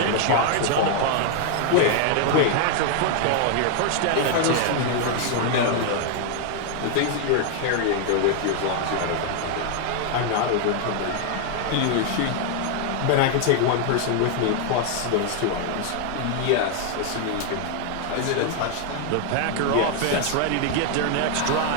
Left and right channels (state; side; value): different; both; correlation 0.00